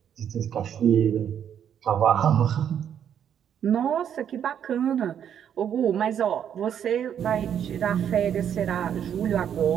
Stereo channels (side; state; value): left; quieter; 9.0 dB